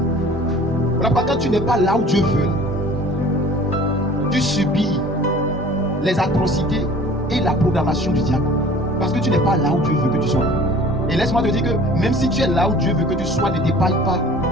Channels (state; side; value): normal; both; correlation 0.47